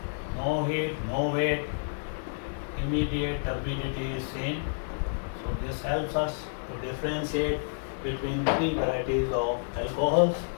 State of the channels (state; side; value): silent; right; digital silence